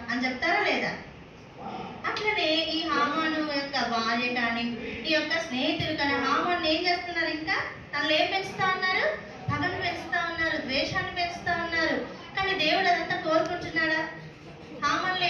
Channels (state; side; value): identical; both; correlation 1.00